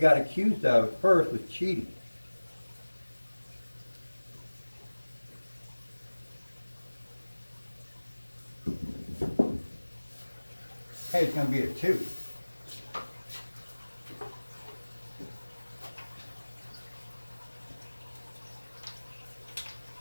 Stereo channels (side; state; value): both; inverted; correlation -1.00